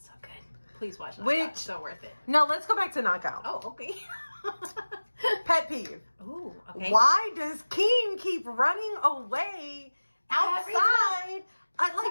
so good. Please watch Knockout. Which, it's so worth it. No, let's go back to Knockout. Oh, okay. Pet peeve. Ooh, okay. Why does Keen keep running away outside? Like,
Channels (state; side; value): inverted; both; correlation -1.00